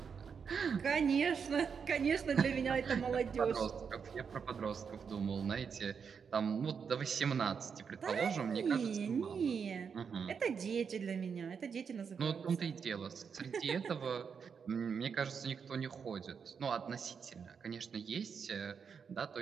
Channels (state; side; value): quieter; left; 6.4 dB